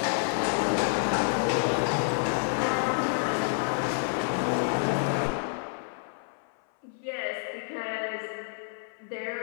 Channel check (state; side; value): silent; right; 59 dB below the other